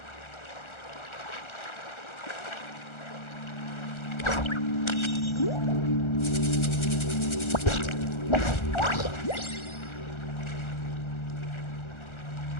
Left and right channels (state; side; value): late; right; 1.4 ms